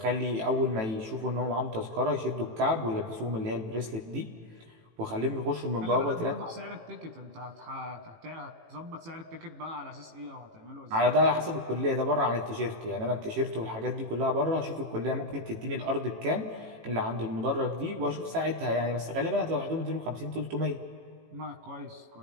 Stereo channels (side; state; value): left; late; 18 ms